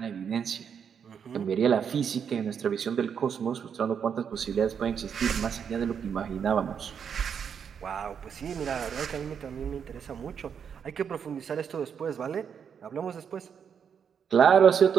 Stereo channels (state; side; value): quieter; left; 7.4 dB